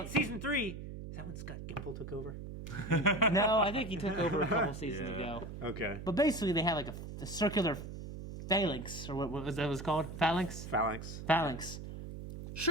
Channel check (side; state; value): right; noise; hum, 9 dB below the sound